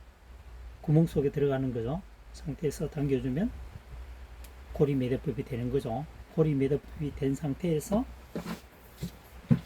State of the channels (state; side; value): identical; both; correlation 1.00